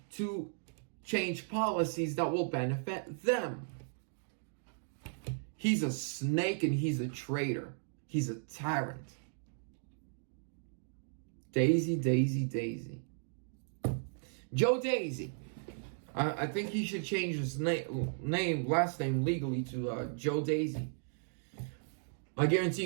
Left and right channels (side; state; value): left; silent; digital silence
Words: to change policies that will benefit them. He's a snake and he's a traitor. He's a tyrant. Daisy, Daisy, Daisy. Joe Daisy. I think he should change his last name legally to Joe Daisy. I guarantee